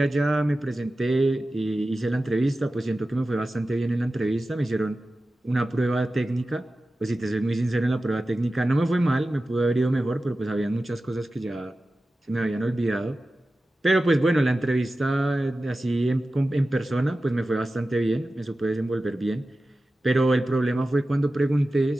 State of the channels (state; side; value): normal; both; correlation 0.94